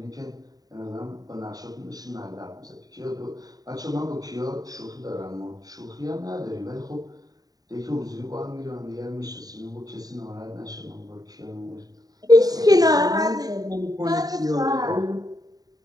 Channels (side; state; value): left; late; 0.18 ms